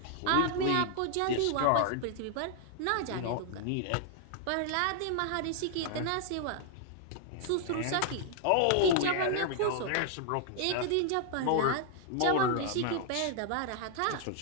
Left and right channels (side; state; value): both; different; correlation 0.00